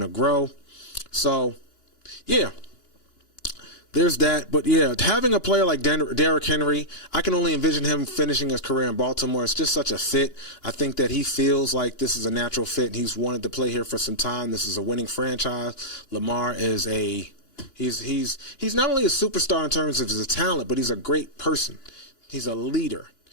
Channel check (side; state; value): right; late; 2.9 ms